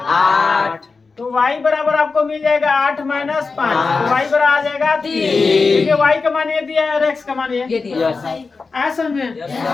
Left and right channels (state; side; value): quieter; right; 4.4 dB